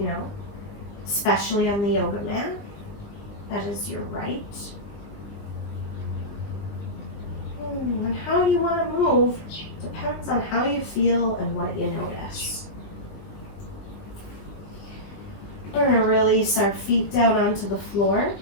know, especially on the yoga mat. That is your right. And how you want to move depends on how you feel and what you notice. We're going to release our feet down onto the floor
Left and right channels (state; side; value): late; right; 20 ms